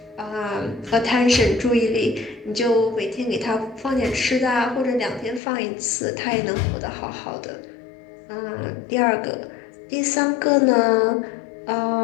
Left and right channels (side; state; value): right; drops out; at 5.4 s